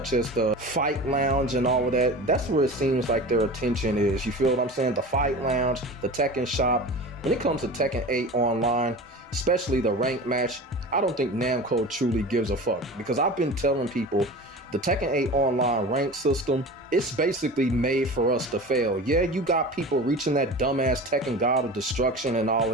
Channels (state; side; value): normal; both; correlation 0.34